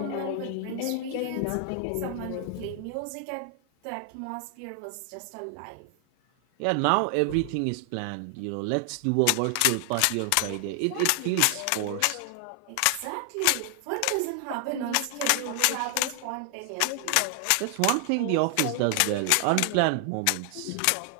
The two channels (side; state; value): both; different; correlation 0.00